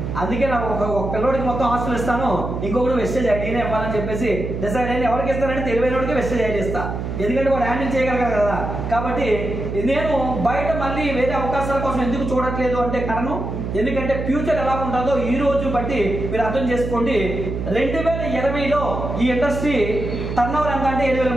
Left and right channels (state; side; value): noise; right; hum, 4 dB below the sound